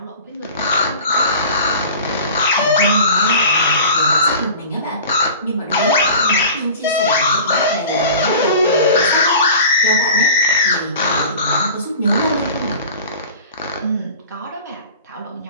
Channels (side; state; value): both; inverted; correlation -0.40